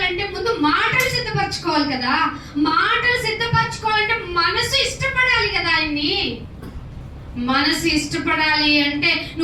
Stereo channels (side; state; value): both; identical; correlation 1.00